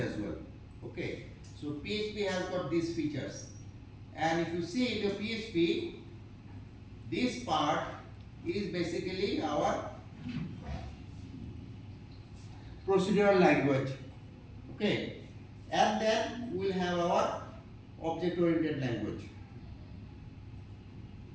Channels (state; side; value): identical; both; correlation 1.00